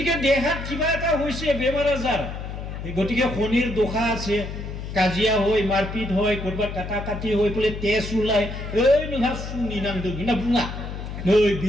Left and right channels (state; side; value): noise; left; hum, 8 dB below the sound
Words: দেহাত কিবা এটা হইছে বেমাৰ আজাৰ গতিকে শনিৰ দোষা আছে কাজিয়া হয় মাৰপিট হয় কৰবা কাটা কাটি হৈ পলে তেজ ওলাই এই নহা সুনি নাংদোं না বুঙা नै